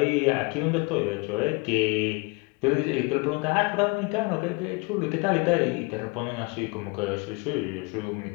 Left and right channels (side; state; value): right; quieter; 28.2 dB